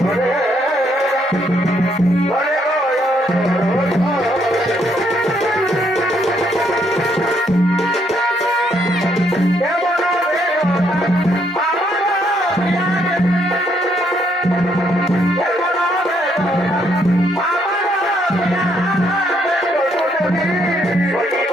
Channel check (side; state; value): both; normal; correlation 0.72